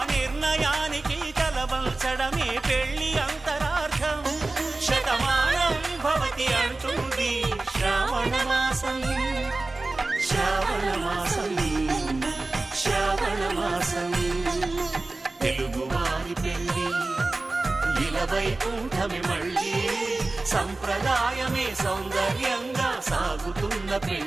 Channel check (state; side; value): quieter; left; 3.2 dB